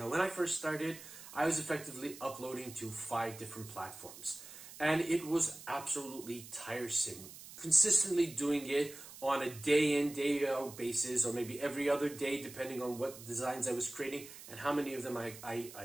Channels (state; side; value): noise; right; hiss, 15 dB below the sound